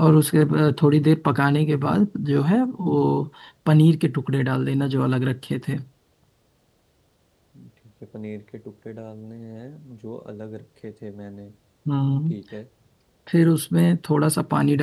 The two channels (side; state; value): both; identical; correlation 1.00